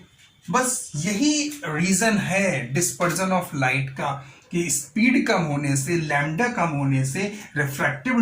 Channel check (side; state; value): both; identical; correlation 1.00